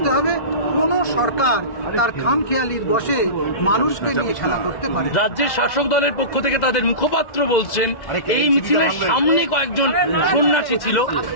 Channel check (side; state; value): right; late; 2.0 ms